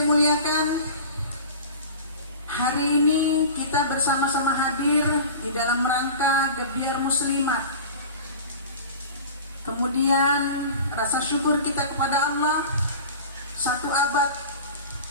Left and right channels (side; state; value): both; inverted; correlation -0.36